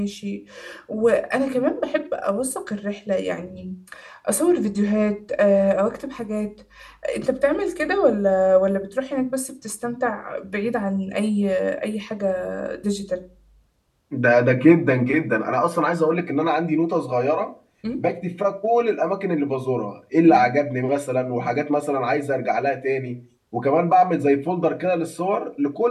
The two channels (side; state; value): both; identical; correlation 1.00